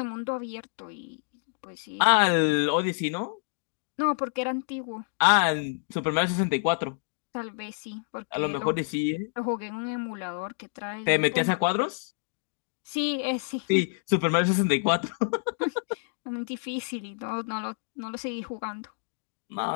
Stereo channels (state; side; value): silent; right; digital silence